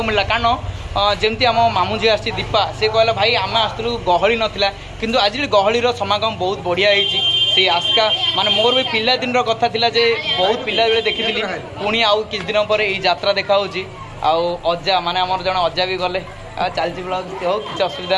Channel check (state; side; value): identical; both; correlation 1.00